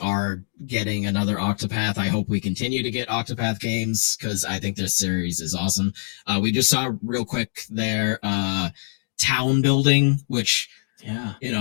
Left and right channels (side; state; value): right; silent; digital silence